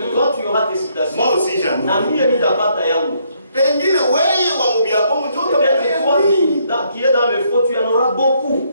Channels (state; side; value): inverted; both; correlation -0.71